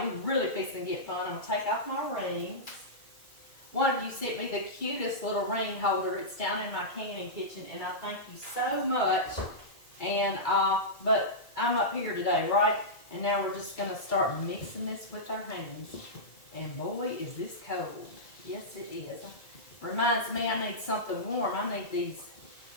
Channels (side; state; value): right; late; 2.2 ms